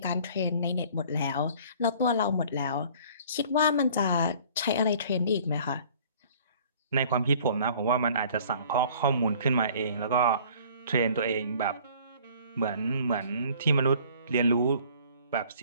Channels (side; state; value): both; inverted; correlation -0.52